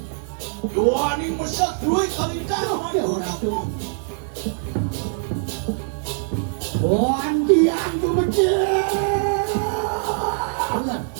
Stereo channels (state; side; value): silent; left; 64 dB below the other